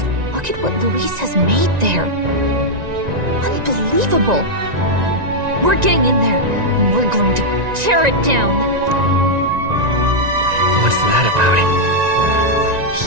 Look at what Luis has made there. Unbelievable. We're getting in there, and we're going to tear it down. What's that about?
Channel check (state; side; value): late; left; 1.9 ms